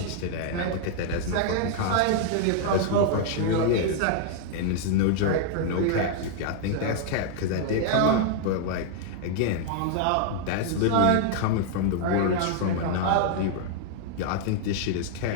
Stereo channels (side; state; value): both; different; correlation 0.00